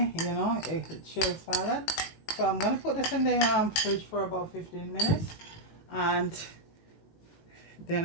you know, a chilled salad. So I'm gonna put this in the fridge for about 15 minutes, and then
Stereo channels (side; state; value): right; late; 19 ms